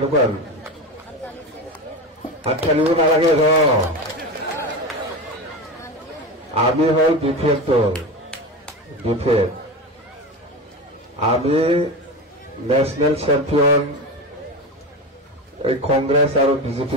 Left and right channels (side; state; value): both; normal; correlation 0.23